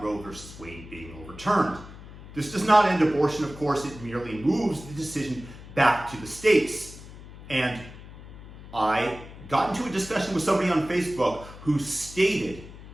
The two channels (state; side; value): noise; left; hum, 16 dB below the sound